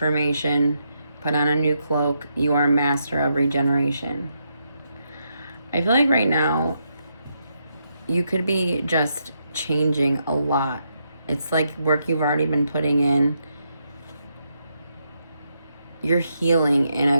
Put on a new cloak. You are a master of regeneration. I feel like right now, you could be just changing a lot. It's like work you've already been putting in. You're healing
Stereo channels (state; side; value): inverted; both; correlation -0.80